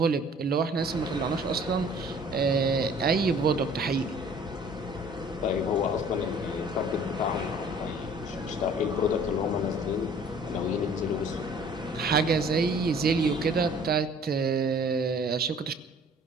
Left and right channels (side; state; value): both; normal; correlation 0.52